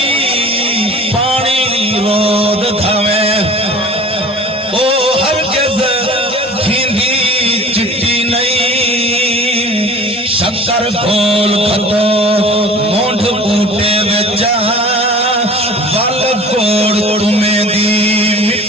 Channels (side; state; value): both; normal; correlation 0.43